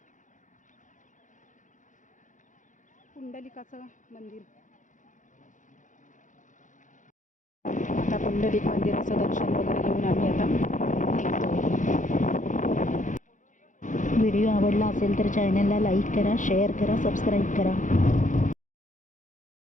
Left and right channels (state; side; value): late; right; 0.37 ms